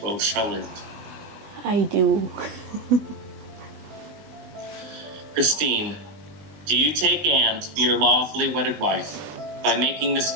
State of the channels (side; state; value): left; late; 20 ms